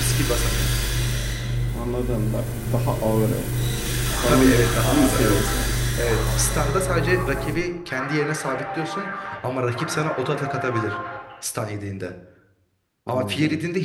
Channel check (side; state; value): both; identical; correlation 1.00